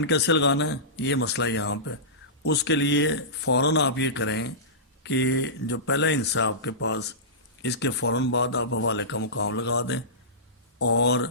کیسے لگانا ہے، یہ مسئلہ یہاں پہ، اس کے لیے فوراً آپ یہ کریں کہ جو پہلا حصہ آپ کے پاس، اس کے فوراً بعد آپ حوالے کا مقام لگا دیں، اور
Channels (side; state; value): both; normal; correlation -0.19